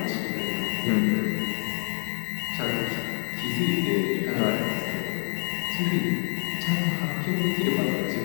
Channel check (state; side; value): silent; right; 60 dB below the other